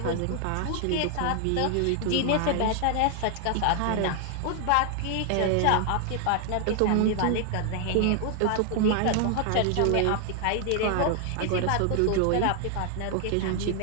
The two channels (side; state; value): both; different; correlation 0.00